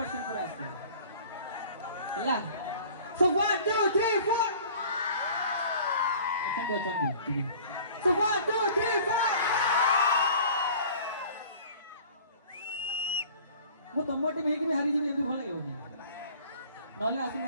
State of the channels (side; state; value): both; inverted; correlation -0.47